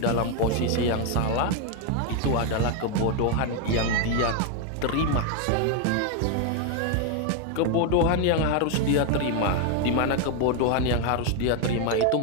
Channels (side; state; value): both; different; correlation 0.01